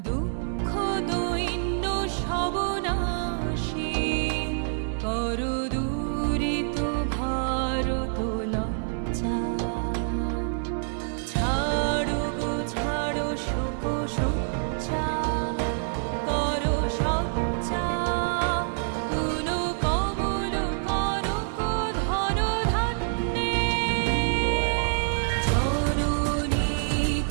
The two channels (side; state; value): left; silent; digital silence